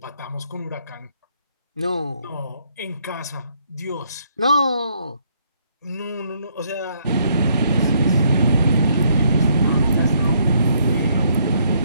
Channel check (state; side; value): inverted; both; correlation -0.70